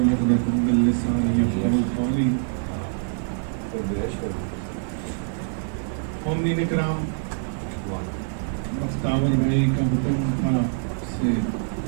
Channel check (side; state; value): left; silent; digital silence